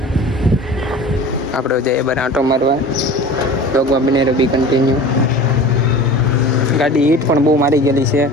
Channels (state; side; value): normal; both; correlation 0.38